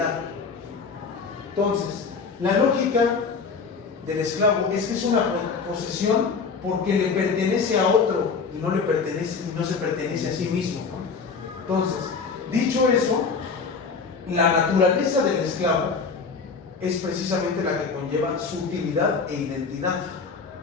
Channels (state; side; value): quieter; right; 5.1 dB